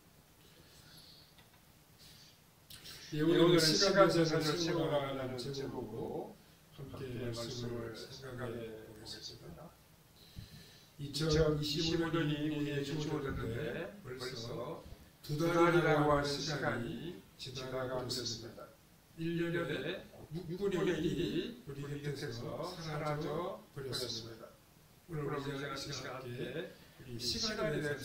오늘 시간 계산을 세워나가는 제목으로 함께 말씀을 생각해 보겠습니다. 2025년이 우리에게 주어졌는데 벌써 두 달이라고 할 시간이 지나가고 있습니다. 1년에 6분의 1이 우리 곁에서 사라져 버렸습니다. 오늘 우리가 이 시간 함께 우리 시간에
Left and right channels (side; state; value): both; identical; correlation 1.00